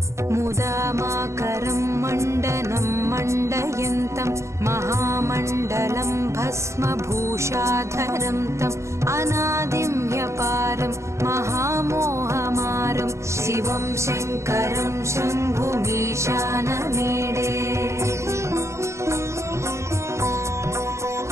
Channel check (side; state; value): left; late; 0.14 ms